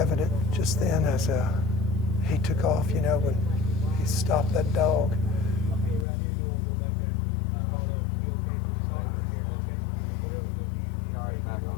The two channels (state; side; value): drops out; right; at 6.1 s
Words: just then as he took off, when he stopped that dog.